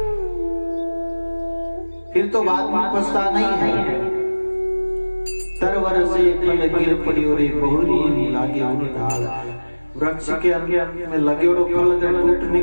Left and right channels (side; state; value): both; inverted; correlation -1.00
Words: फिर तो बाद में पछता नहीं है। तरवर से फल गिर पड़ी और बहुरी लागे उन डाल। वृक्ष के अंदर में लगे और फल अगर